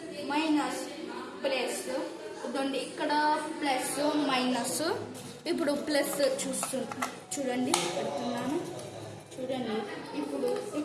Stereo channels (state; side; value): identical; both; correlation 1.00